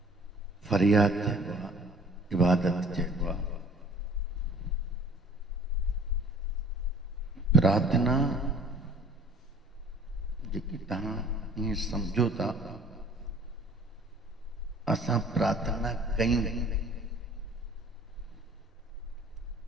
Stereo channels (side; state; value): both; normal; correlation 0.52